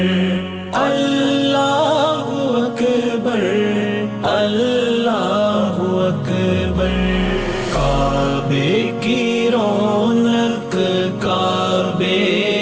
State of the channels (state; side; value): identical; both; correlation 1.00